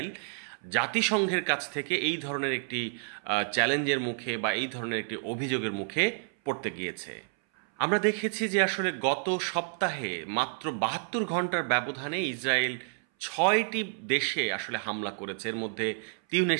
জাতিসংঘের কাছ থেকে এই ধরনের একটি চ্যালেঞ্জের মুখে বা এই ধরনের একটি অভিযোগের মুখে পড়তে গিয়েছে। আমরা দেখেছি যে আসলে গত সপ্তাহে মাত্র 72 ঘন্টার ব্যবধানে ইসরায়েল 6টি দেশে আসলে হামলা করেছে। এর মধ্যে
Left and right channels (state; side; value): silent; left; 58 dB below the other